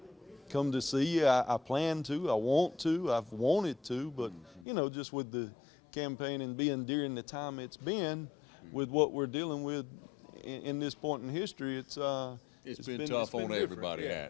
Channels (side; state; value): right; drops out; at 4.7 s